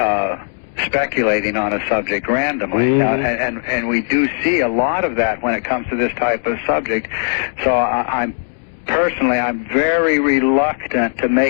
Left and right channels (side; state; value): right; silent; 68 dB below the other